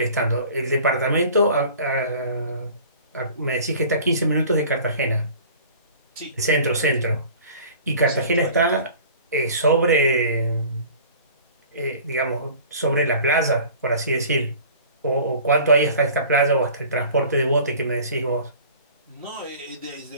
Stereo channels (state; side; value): inverted; both; correlation -0.46